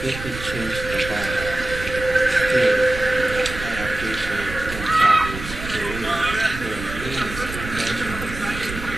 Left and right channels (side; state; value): right; noise; rumble, 9 dB below the sound